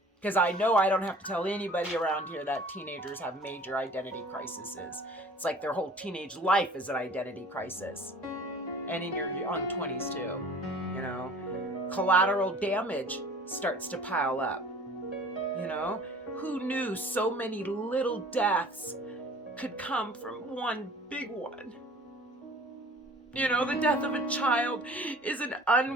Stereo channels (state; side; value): normal; both; correlation 0.47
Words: Because I know I don't have to tell anybody around here that teenagers have major identity crises. It's like their whole teenage life is an identity crisis. And in your young 20s too, you know. Collateral damage starts to pile up, you know. Who knew so many little deaths could come from one big one? You know, the death of a child is an